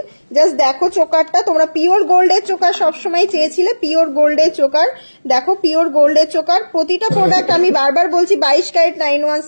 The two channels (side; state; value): both; inverted; correlation -1.00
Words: জাস্ট দেখো চোকারটা, তোমরা পিওর গোল্ডের চোকার সবসময় চেয়েছিলে, পিওর গোল্ডের চোকার। দেখো পিওর গোল্ডের চোকার। প্রতিটা প্রোডাক্ট আমি বারবার বলছি 22 ক্যারেট